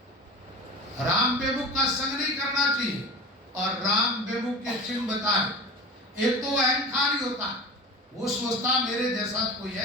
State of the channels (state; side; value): normal; both; correlation 0.32